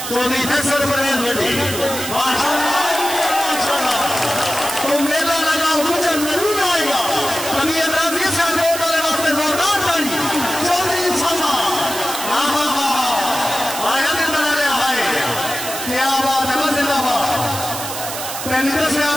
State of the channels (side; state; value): right; noise; hiss, 7 dB below the sound